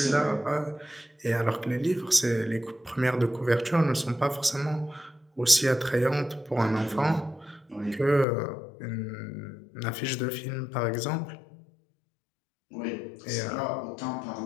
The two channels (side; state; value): right; drops out; at 8.2 s